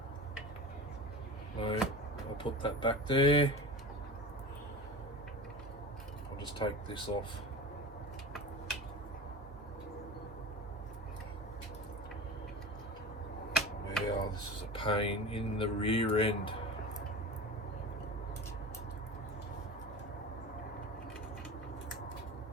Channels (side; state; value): both; normal; correlation 0.32